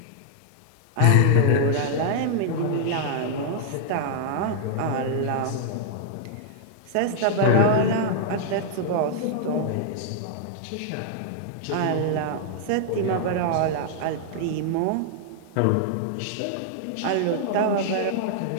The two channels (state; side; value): different; both; correlation -0.01